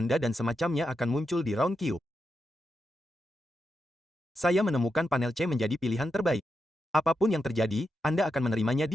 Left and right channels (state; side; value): normal; both; correlation 0.86